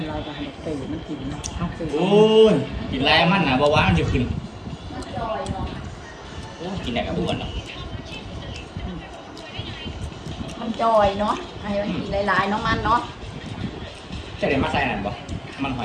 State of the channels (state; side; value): identical; both; correlation 1.00